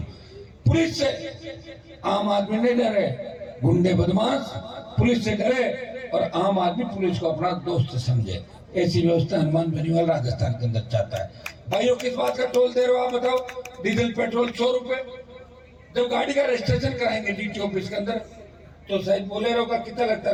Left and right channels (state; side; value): identical; both; correlation 1.00